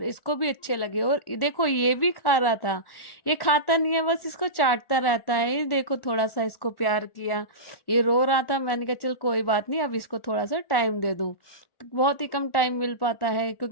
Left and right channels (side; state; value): right; late; 1.1 ms